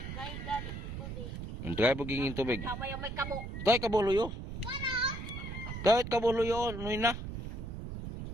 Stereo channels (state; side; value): noise; right; rumble, 7 dB below the sound